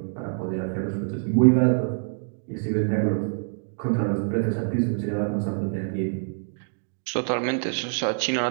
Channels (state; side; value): silent; left; 61 dB below the other